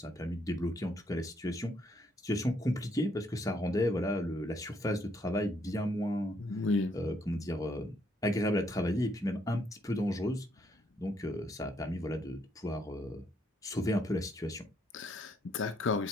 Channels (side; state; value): both; normal; correlation 0.72